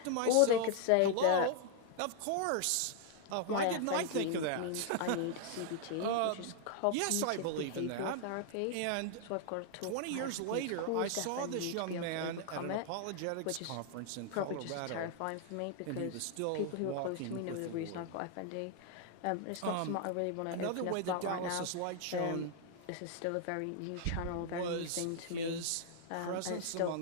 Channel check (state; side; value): different; both; correlation 0.00